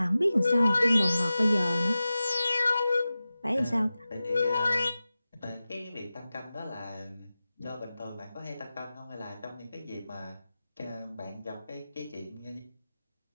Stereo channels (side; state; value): both; inverted; correlation -0.95